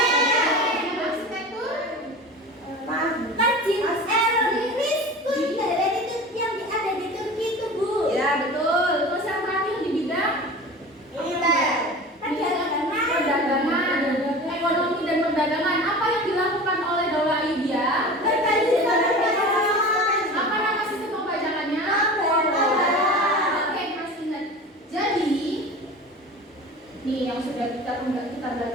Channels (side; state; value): both; normal; correlation 0.35